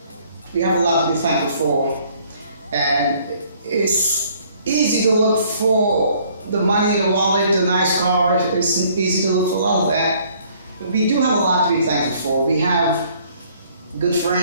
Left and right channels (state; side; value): inverted; both; correlation -0.61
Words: We have a lot to be thankful for, and it's easy to look for the money in the wallet, the nice car. It's easy to look for a lot of that. But we do have a lot to be thankful for. We have good